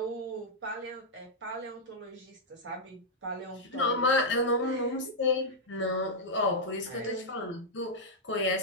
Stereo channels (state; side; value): normal; both; correlation -0.06